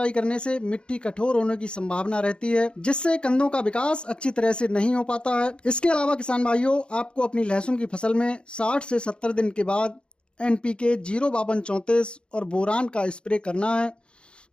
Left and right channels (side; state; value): right; late; 0.054 ms